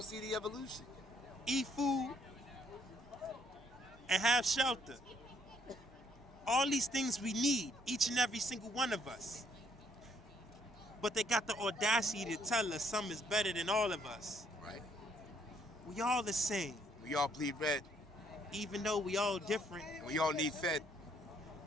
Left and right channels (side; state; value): both; normal; correlation 0.68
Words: see the evolution. Eat food. And have shelter. All these things we need, each and every single one of us. But they got the audacity to tell us some is better than all of us. Right. We all the same. We all bleed red. Even though we all different. And we all need fed.